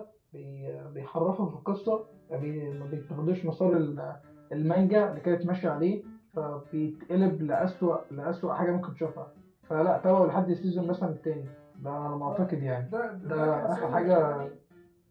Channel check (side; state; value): both; identical; correlation 1.00